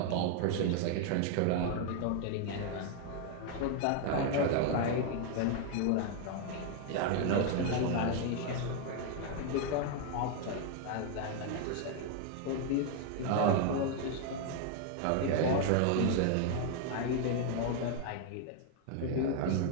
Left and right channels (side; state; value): both; different; correlation 0.00